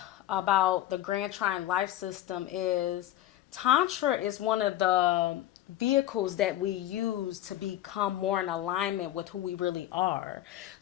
about the Grand Trine Life System is Tantra is one of the vehicles that we use to become more in alignment with who we really are.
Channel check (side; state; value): right; quieter; 13.8 dB